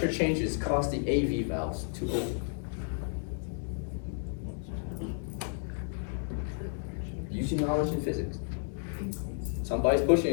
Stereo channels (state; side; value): silent; right; 56 dB below the other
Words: changes cause the AV valves to open? Use your knowledge in physics. Somebody's pushing